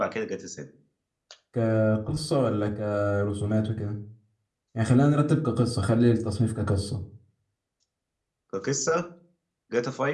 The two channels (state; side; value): identical; both; correlation 1.00